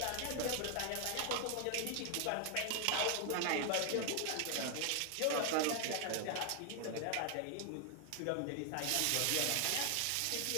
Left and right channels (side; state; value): both; different; correlation 0.00